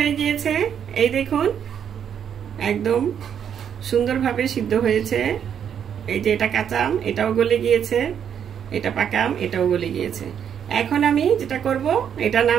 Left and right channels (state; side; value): quieter; left; 8.5 dB